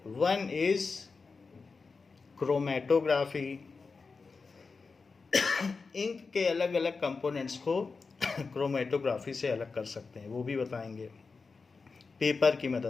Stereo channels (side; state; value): right; quieter; 4.5 dB